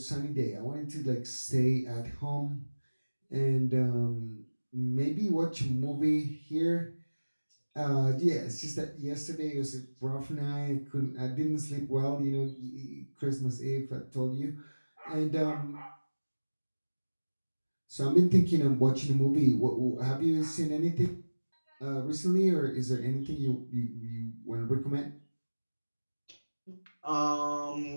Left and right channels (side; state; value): both; inverted; correlation -1.00